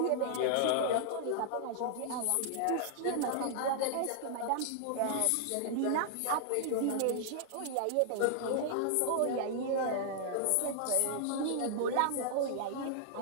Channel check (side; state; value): both; different; correlation -0.01